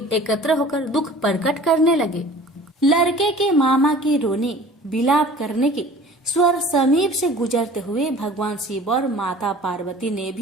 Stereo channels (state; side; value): normal; both; correlation 0.45